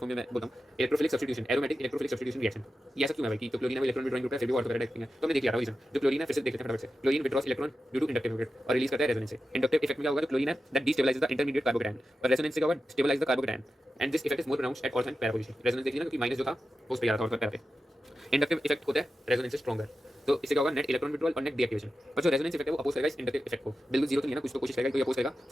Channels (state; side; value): normal; both; correlation 0.91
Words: फॉर्म में मैं बोलता हूँ electrophilic substitution, aromatic electrophilic substitution reaction. ये ऐसा क्यों है भाई कि तो क्लोरीन है इलेक्ट्रॉन विड्रॉइंग ग्रुप है, फिर भी ऑर्थो पैरा डायरेक्टिंग है, तो हमने देख लिया था रीजन। जो क्लोरीन है फिर से देख लेते हैं फटाफट से, chlorine withdraws electron due to inductive effect और रिलीज करता है रेजोनेंस से। इंडक्टिव इफेक्ट में क्या होगा, जो क्लोरीन है that destabilises the intermediate carbocation, और रेजोनेंस से क्या होगा, stabilise the carbocation, and this effect is more pronounced at ortho and para position. Resonance देखिए ना क्योंकि माइनस जो था वो उस पे आ रहा था ऑर्थो पैरा पे। इंडक्टिव इफेक्ट होता है रेजोनेंस से स्ट्रॉन्गर, तो इससे क्या होगा नेट इलेक्ट्रॉन विड्रॉल और नेट डीएक्टिवेशन। और जो रेजोनेंस इफेक्ट है वो अपोज करेगा इस इंडक्टिव इफेक्ट को, बिल्कुल जीरो तो नहीं है ना, कुछ तो कोशिश करेगा, तो ये अपोज करेगा